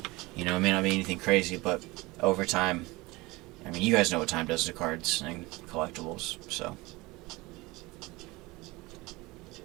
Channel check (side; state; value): left; quieter; 22.3 dB